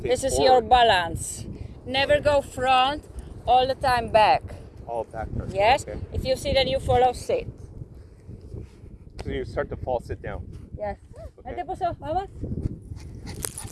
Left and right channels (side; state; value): both; identical; correlation 1.00